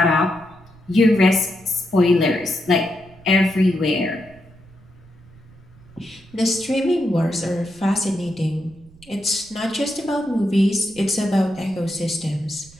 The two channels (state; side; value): noise; right; rumble, 24 dB below the sound